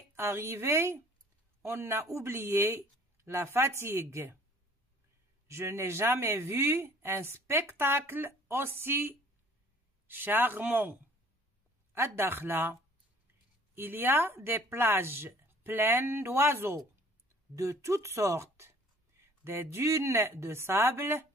arrivé, on a oublié la fatigue. Je n'ai jamais vu un spectacle aussi charmant. À Dakhla, il y a des plages pleines d'oiseaux de toutes sortes, des dunes de sable,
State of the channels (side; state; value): both; normal; correlation 0.54